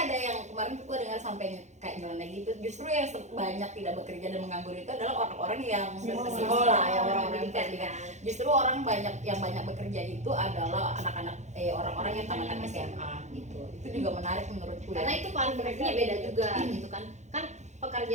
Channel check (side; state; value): left; late; 0.34 ms